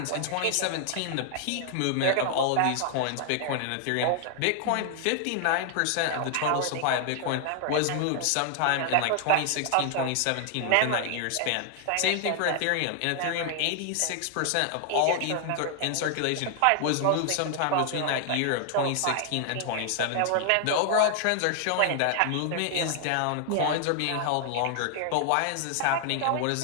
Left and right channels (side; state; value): both; different; correlation 0.00